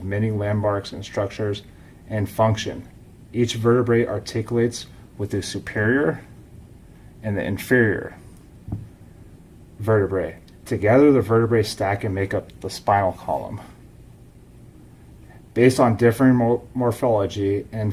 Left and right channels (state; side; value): identical; both; correlation 1.00